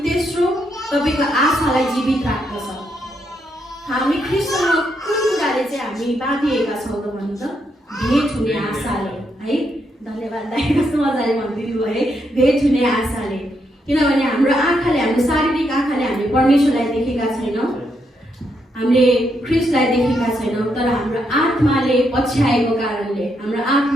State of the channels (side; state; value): both; normal; correlation 0.79